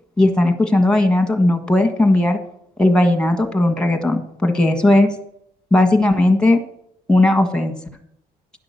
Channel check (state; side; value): normal; both; correlation 0.92